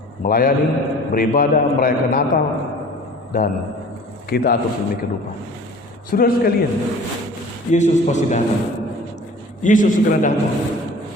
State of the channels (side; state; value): both; normal; correlation 0.45